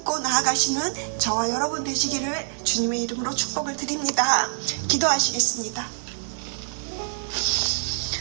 나아가시는 저와 여러분 되시기를 주님의 이름으로 축복을 드립니다. 기도하시겠습니다.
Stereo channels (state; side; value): silent; left; digital silence